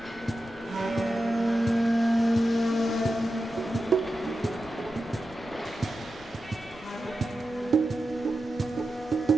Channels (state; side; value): noise; left; rumble, 21 dB below the sound